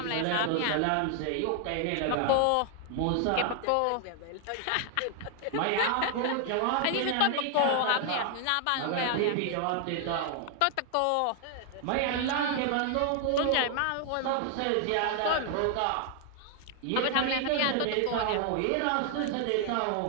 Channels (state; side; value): different; both; correlation 0.00